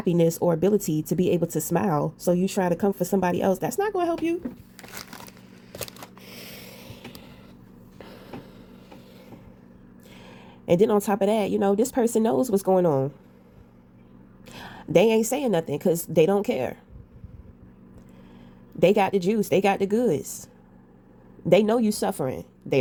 or ability to be able to smile. So you try to come for somebody else. That's not going to help you. And then on top of that, this person knows what's going on. They ain't saying nothing because they don't care. They got the juice. They got the goods. They know you suffering. They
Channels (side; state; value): both; identical; correlation 1.00